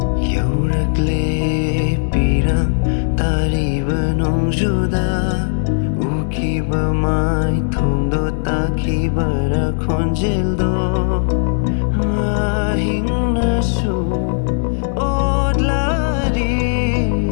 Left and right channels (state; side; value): silent; right; digital silence